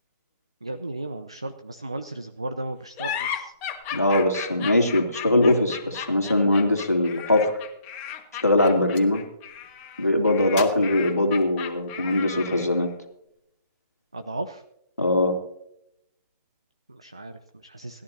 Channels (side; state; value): both; inverted; correlation -0.68